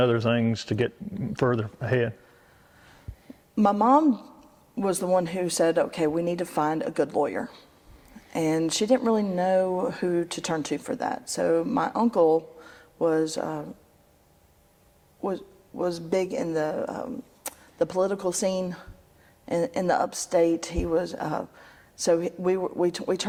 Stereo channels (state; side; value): identical; both; correlation 1.00